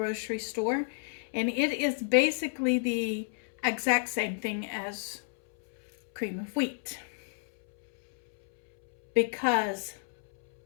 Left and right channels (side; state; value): right; silent; 58 dB below the other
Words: store, and it is basically the exact same thing as cream of wheat, because